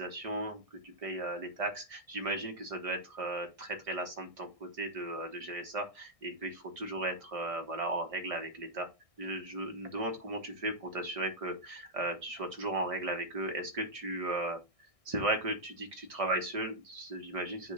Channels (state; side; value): late; left; 1.6 ms